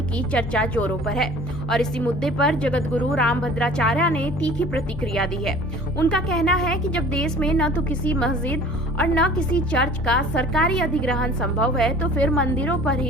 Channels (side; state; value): both; normal; correlation 0.46